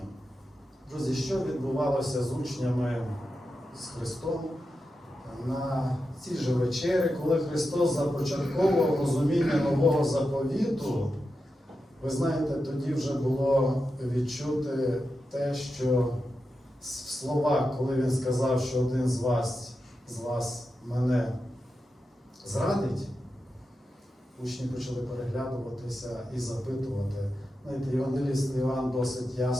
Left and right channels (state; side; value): normal; both; correlation 0.89